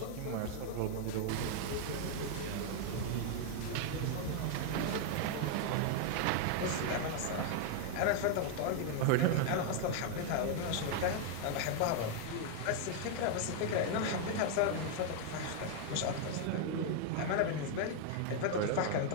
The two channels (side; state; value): both; different; correlation 0.00